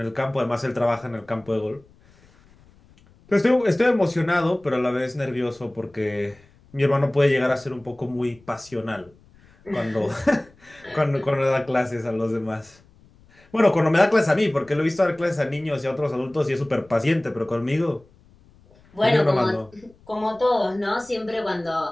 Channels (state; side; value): noise; left; rumble, 28 dB below the sound